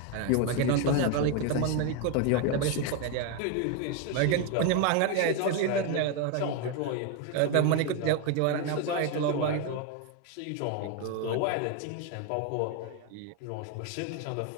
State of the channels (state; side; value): different; both; correlation 0.01